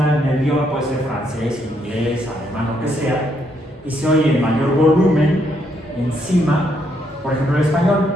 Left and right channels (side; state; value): both; normal; correlation 0.74